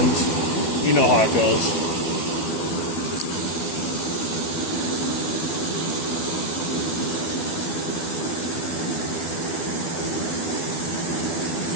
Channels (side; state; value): right; late; 12 ms